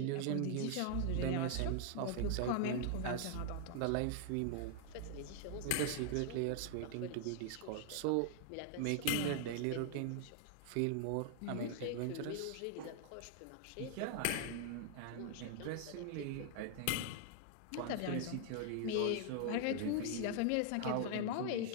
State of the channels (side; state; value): both; different; correlation 0.00